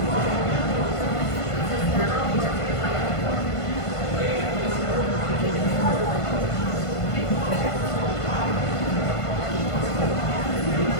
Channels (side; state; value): right; late; 1.5 ms